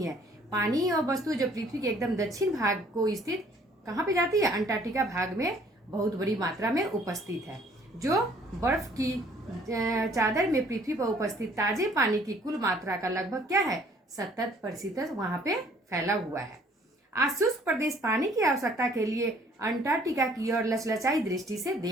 है। पानी और वस्तु जो पृथ्वी के एकदम दक्षिण भाग को स्थित कहाँ पे जाती है, अंटार्कटिका भाग में बहुत बड़ी मात्रा में उपस्थित है। जो बर्फ की चादर में पृथ्वी पर उपस्थित ताजे पानी की कुल मात्रा का लगभग क्या है, 70% वहां पे फैला हुआ है। आज शुष्क प्रदेश पानी की आवश्यकता के लिए अंटार्कटिका की ओर लचलचाई दृष्टि से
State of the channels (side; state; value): both; normal; correlation 0.59